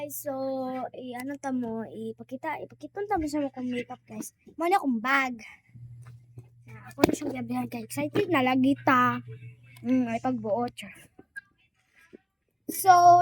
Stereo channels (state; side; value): identical; both; correlation 1.00